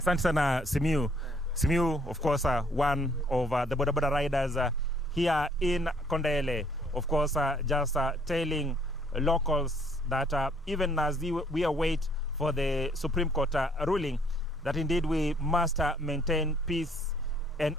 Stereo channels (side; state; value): both; normal; correlation 0.63